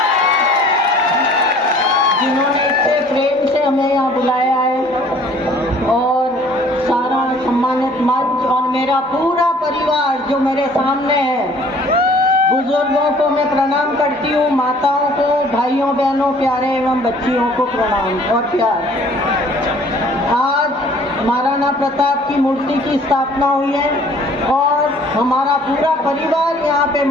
प्रेम से हमें यहाँ बुलाया है, और सारा सम्मानित मंच और मेरा पूरा परिवार जो मेरे सामने है, बुजुर्गों को मैं प्रणाम करती हूँ, माताओं को, भाइयों बहनों, प्यारे एवं बच्चियों को प्रणाम और प्यार। आज महाराणा प्रताप की मूर्ति की स्थापना हुई है और हमारा पूरा परिवार यहाँ पे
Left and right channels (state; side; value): normal; both; correlation 0.54